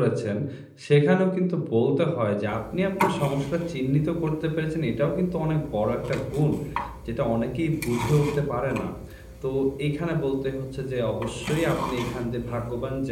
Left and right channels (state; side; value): identical; both; correlation 1.00